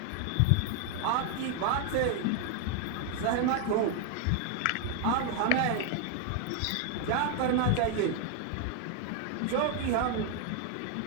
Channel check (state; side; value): different; both; correlation 0.01